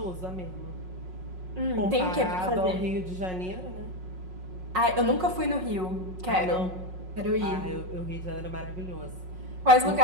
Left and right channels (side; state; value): left; late; 5.5 ms